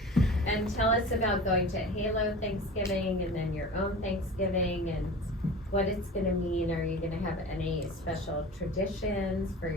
And tell us about going to HALO Thanksgiving and then your own Thanksgiving, and what it's gonna mean? Are you gonna have any special traditions for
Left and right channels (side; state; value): both; normal; correlation 0.36